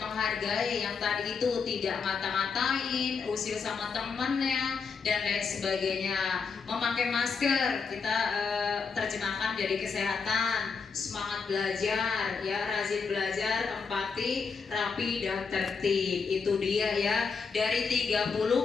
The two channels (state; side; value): quieter; right; 5.3 dB